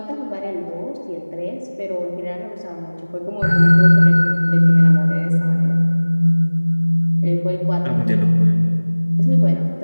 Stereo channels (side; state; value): both; inverted; correlation -1.00